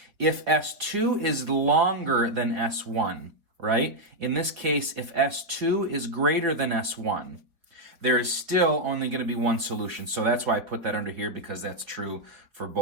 If S2 is longer than S1, right? In this case, if S2 is greater than S1, there is still only going to be one solution. So that's why I put that under here, because that's true for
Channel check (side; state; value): left; late; 4.3 ms